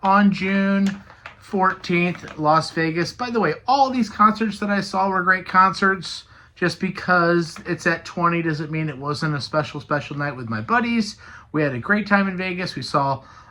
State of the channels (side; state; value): both; identical; correlation 1.00